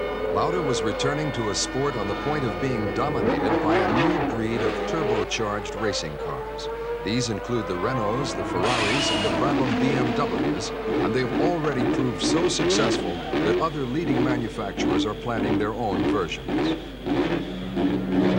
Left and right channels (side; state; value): both; identical; correlation 1.00